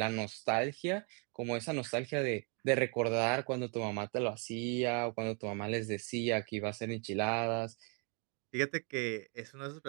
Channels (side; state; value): left; quieter; 37.5 dB